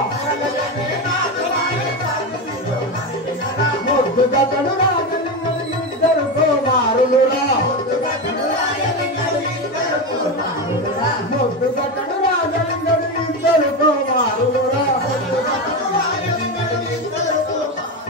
ముద్దు గతడు రాజలింగడు ఇద్దరు కుమారులురా ముద్దు గతడు రాజలింగడు ఇద్దరు కుమారులురా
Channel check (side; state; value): both; normal; correlation 0.16